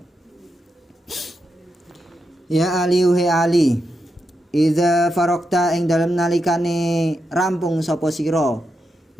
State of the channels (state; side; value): normal; both; correlation 0.85